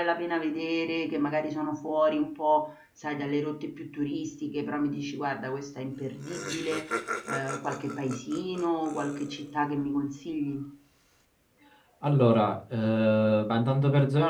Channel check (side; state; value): both; identical; correlation 1.00